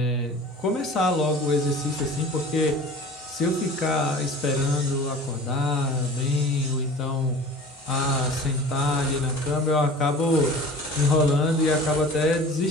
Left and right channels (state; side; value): normal; both; correlation 0.42